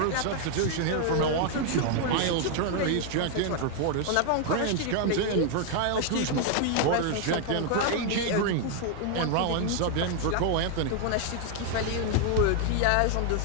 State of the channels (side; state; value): both; different; correlation 0.00